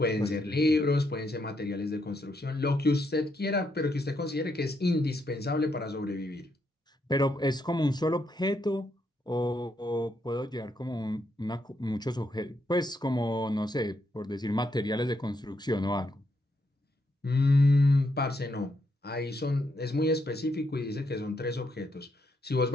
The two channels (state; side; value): normal; both; correlation 0.78